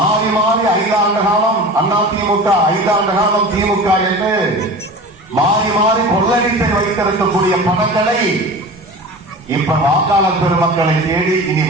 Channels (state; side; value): normal; both; correlation 0.35